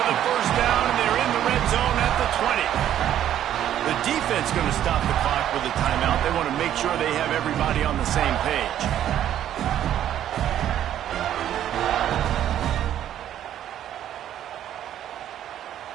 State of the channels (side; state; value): left; quieter; 11.1 dB